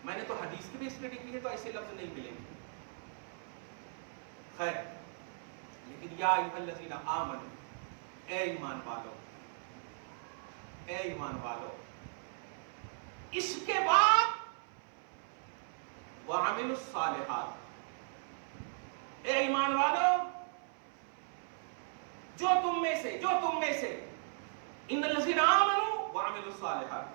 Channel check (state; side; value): silent; left; 53 dB below the other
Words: میں نے تو حدیث کی بھی اسٹڈی کی ہے تو ایسے لفظ نہیں ملیں گے۔ خیر، لیکن یا ایھا الذین آمنوا، اے ایمان والو، اے ایمان والو، اس کے بعد وعملوا الصالحات، اے ایمان والو، جو تم میں سے ان الذین آمنوا وعملوا الصالحات